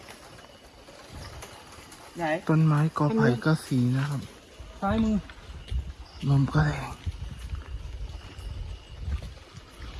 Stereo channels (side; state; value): both; identical; correlation 1.00